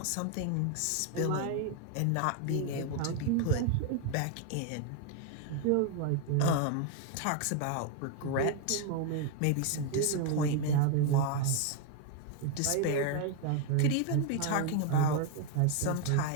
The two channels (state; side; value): different; both; correlation 0.01